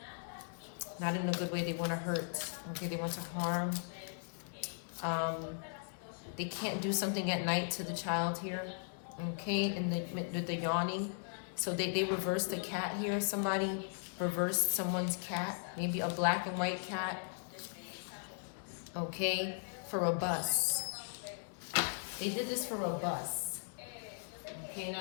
Not in a good way. They want to hurt, okay, they want to harm. They can't do something at night to the child here, okay, and the yawning. So they reversed the cat here. Somebody reversed someone's cat, maybe a black and white cat, okay, for a bus. They did this for a bus. Okay,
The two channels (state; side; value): silent; right; digital silence